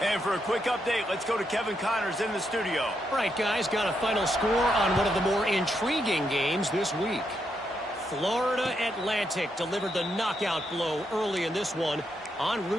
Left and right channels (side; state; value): both; normal; correlation 0.80